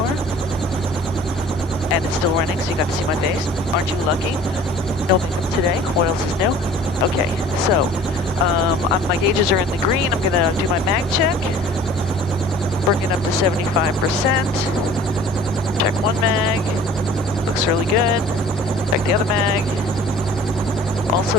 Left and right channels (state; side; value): normal; both; correlation 0.48